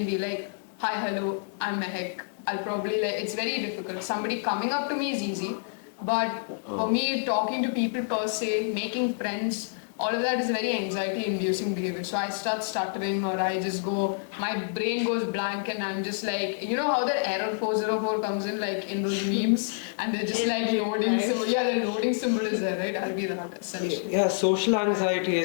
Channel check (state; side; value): silent; right; digital silence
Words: be like, hi, hello, I'm Mehak. I'll probably it's very difficult. Somebody coming up to me is easy, but for me, talking to people per se, making friends, all of that is very anxiety-inducing behavior. So I start stuttering, or I just go, my brain goes blank, and I'm just like, how the error 404 comes in, like in those memes, and they're just like loading symbol. Yeah, the loading symbol is there, right? I'll be that essentially. Yeah, social anxiety,